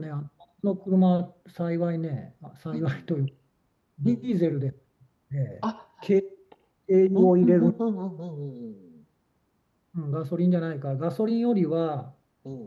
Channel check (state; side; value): identical; both; correlation 1.00